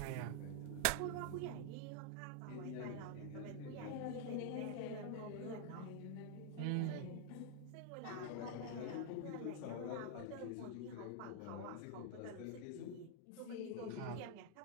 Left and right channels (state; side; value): different; both; correlation 0.00